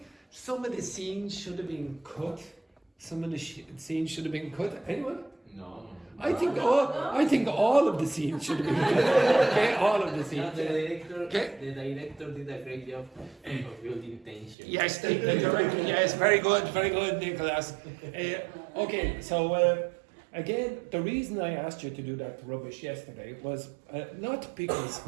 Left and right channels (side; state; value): left; drops out; at 14.6 s